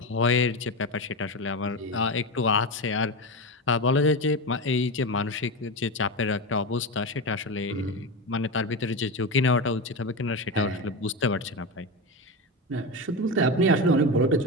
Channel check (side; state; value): both; normal; correlation 0.18